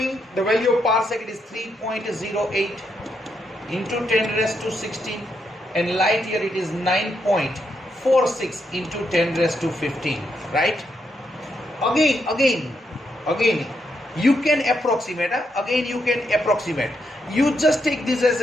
the value of parsec. It is 3.08 into 10 raised to 16, and light year it is 9.46 into 10 raised to 15, right? Again you can approximate. Again you can approximate. You just take this as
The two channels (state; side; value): normal; both; correlation 0.80